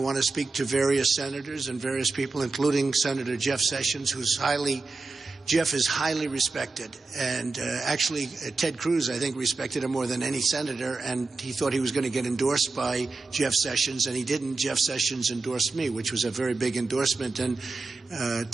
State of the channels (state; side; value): quieter; left; 3.7 dB